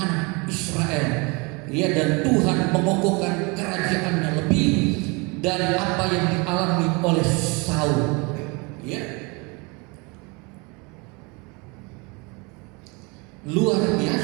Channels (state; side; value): quieter; left; 28.8 dB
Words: Israel, ya. Dan Tuhan mengokohkan kerajaannya lebih dari apa yang dialami oleh Saul, ya. Luar